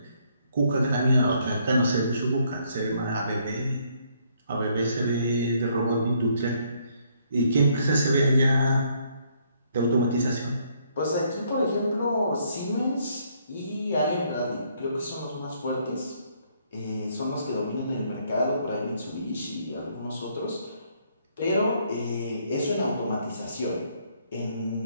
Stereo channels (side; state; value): both; inverted; correlation -0.69